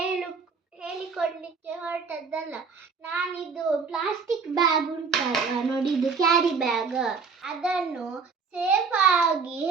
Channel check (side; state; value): left; quieter; 5.3 dB